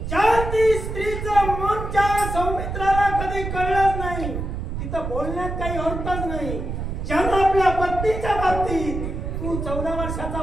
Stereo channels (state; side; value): noise; right; rumble, 5 dB below the sound